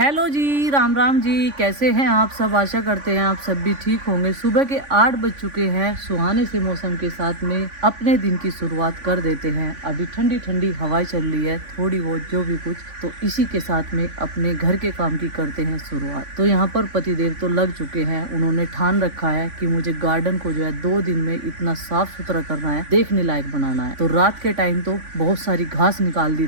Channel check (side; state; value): left; late; 3.5 ms